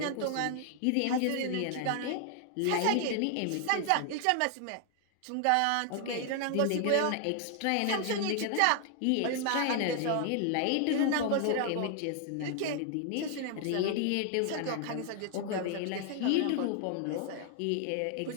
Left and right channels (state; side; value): different; both; correlation 0.00